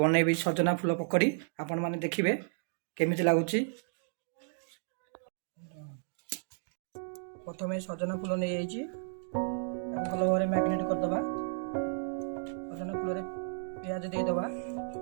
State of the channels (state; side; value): silent; left; digital silence